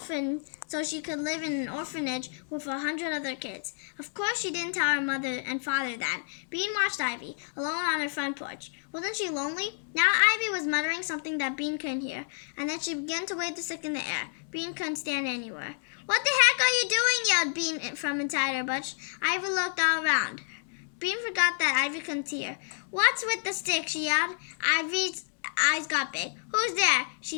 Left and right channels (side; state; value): right; silent; digital silence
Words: so she could live in an orphanage with 100 other kids. Of course, she didn't tell her mother and father that. Bean watched Ivy, alone on her front porch. Wasn't she lonely? Now Ivy was muttering something that Bean couldn't hear, and then she began to wave the stick in the air. Bean couldn't stand anywhere. What the heck are you doing? Yelled Bean from inside her bush. Ivy looked all around. Bean forgot that Ivy couldn't see her. What's with the stick? She yelled. Ivy's eyes got big. Who's there?